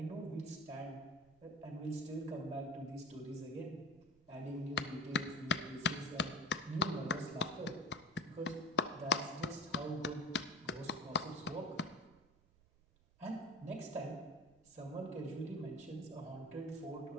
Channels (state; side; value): noise; right; rumble, 29 dB below the sound